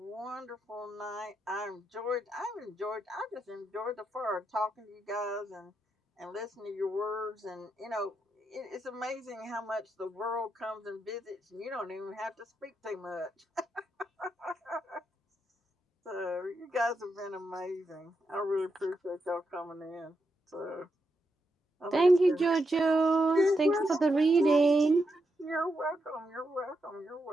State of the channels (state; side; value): normal; both; correlation 0.83